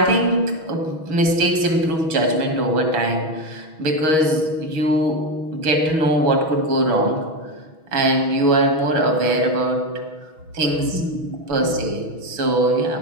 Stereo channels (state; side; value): late; left; 6.3 ms